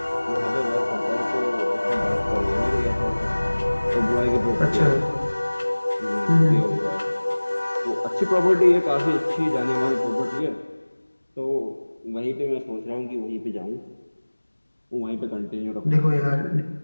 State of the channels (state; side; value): inverted; both; correlation -1.00